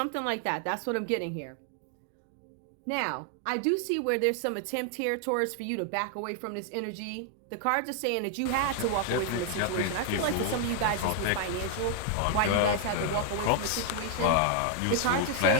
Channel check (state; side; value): different; both; correlation 0.00